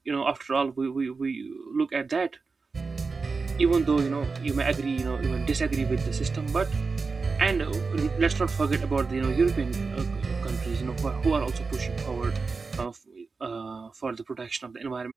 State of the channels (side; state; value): left; quieter; 4.4 dB